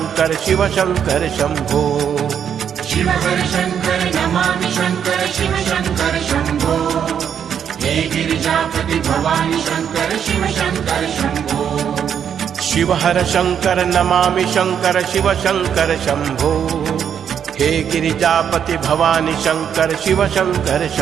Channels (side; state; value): left; quieter; 8.3 dB